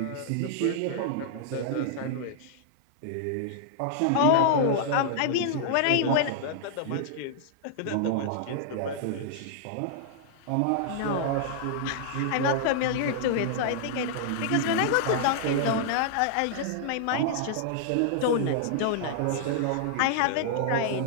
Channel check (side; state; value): both; different; correlation -0.01